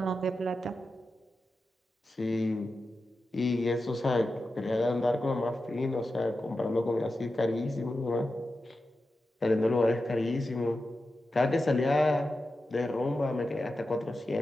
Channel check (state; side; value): normal; both; correlation 0.91